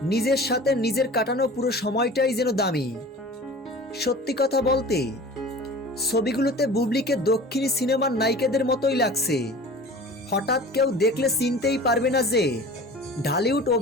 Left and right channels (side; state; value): both; normal; correlation 0.40